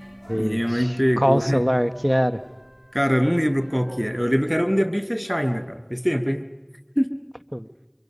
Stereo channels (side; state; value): both; identical; correlation 1.00